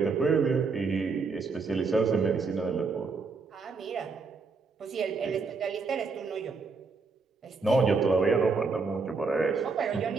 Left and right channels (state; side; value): quieter; left; 4.4 dB